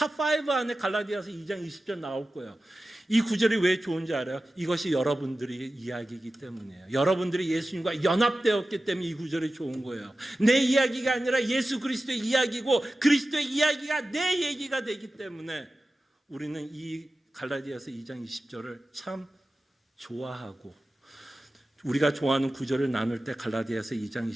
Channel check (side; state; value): both; normal; correlation 0.94